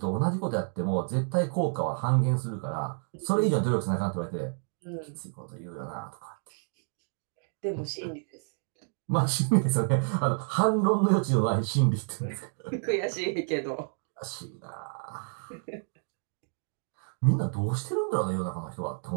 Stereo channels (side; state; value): left; silent; 58 dB below the other